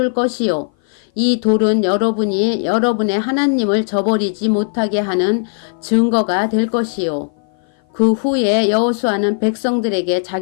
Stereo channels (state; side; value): silent; right; 57 dB below the other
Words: 것이요. 이 돌은 여러분이 여러분의 하나님을 저버리지 못하게 하는 증거가 될 것이요. 그 후에 여호수아는 백성들에게